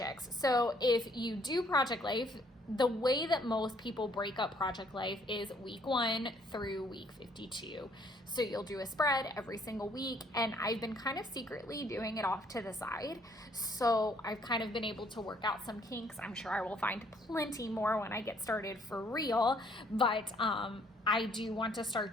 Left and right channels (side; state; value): both; normal; correlation 0.64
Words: So if you do project life, the way that most people break up project life is week 1 through week 52. So you'll do a spread every single week, and I've been kind of secretly doing it off to the side. So I've kind of been able to work out some kinks. I'm sure I will find plenty more when I get started for real, but I do want to